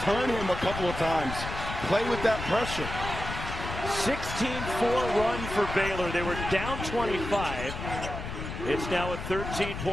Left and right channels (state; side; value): noise; left; rumble, 7 dB below the sound